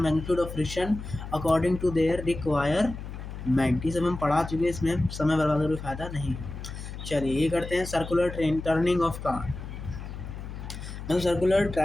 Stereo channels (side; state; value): left; noise; hum, 9 dB below the sound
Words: magnitude of friction according to their requirement. ये सब हम पढ़ा चुके हैं, इसमें समय बर्बाद का कोई फ़ायदा नहीं है। चलिए, ये करते हैं circular train turning of car. मतलब सर्कुलर